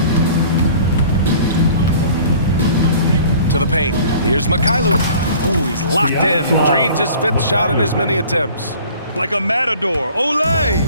To the paint. Here's Mikhailuk. Ooh, he's locked in. Drains his 5th shot in as many attempts. Like a matador. Olay!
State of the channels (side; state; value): both; inverted; correlation -0.48